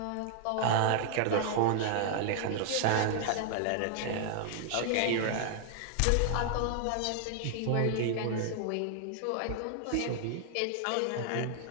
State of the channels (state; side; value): different; both; correlation 0.00